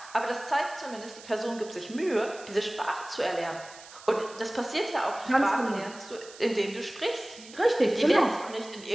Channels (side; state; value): right; noise; hiss, 18 dB below the sound